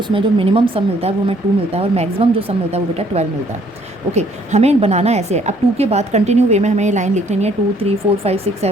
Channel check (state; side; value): normal; both; correlation 0.63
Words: जो मिनिमम सम मिलता है वो हमें 2 मिलता है और मैक्सिमम जो सम मिलता है वो बेटा 12 मिलता है। ओके, हमें बनाना ऐसे है। अब 2 के बाद कंटिन्यू वे में हमें ये लाइन लिख लेनी है 2 3 4 5 6